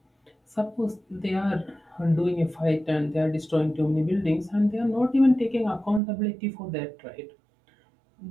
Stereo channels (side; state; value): left; drops out; at 6.0 s